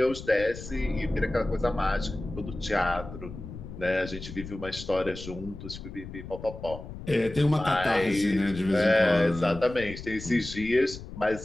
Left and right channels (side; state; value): left; noise; rumble, 12 dB below the sound